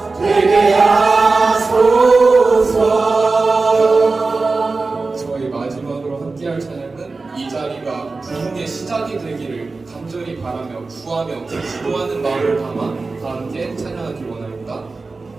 되게 하소서. 저희 마지막으로 함께할 찬양은 이 자리가 부흥의 시작이 되기를 간절히 바라며 구하며 기도하는 마음을 담아 다 함께 찬양하기 원합니다.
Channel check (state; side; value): quieter; left; 3.8 dB